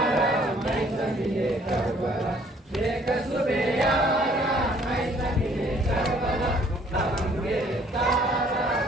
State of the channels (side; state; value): both; normal; correlation 0.60